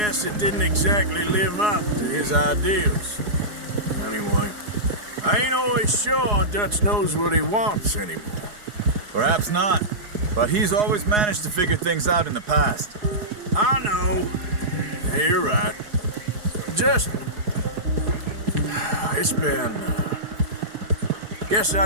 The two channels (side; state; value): left; late; 4.8 ms